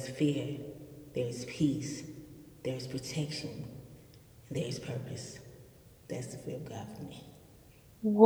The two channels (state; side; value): identical; both; correlation 1.00